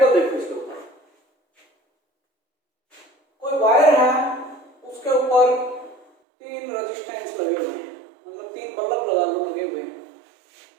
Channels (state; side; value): drops out; left; at 6.1 s